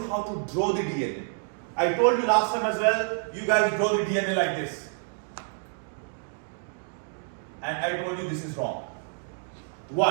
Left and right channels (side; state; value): left; silent; 55 dB below the other